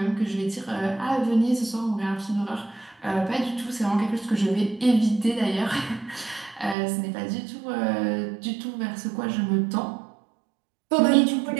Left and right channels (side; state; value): left; drops out; at 6.8 s